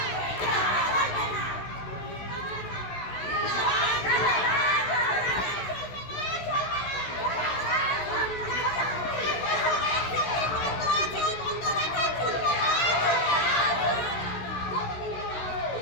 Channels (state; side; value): late; right; 16 ms